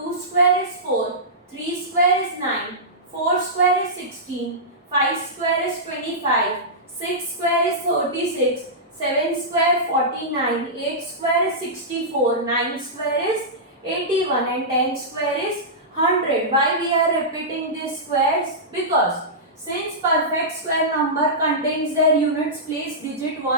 square is 4, 3 square is 9, 4 square is 16, 5 square is 25, 6 square is 36, 7 square 49, 8 square is 64, 9 square is 81 and 10 square is 100. Why we are repeating these squares? Because since perfect square number contains their units place digit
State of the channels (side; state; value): both; normal; correlation -0.14